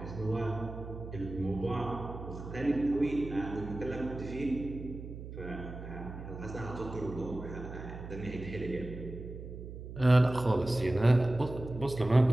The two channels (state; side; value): noise; right; hum, 10 dB below the sound